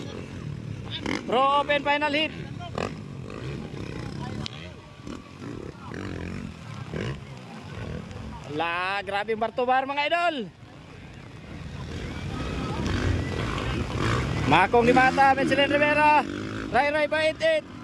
Pro Open final hit. La, grabe Bartobar mga idol. Makong di Mata, Michelin Rivera, Ray Baitit.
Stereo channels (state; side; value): identical; both; correlation 1.00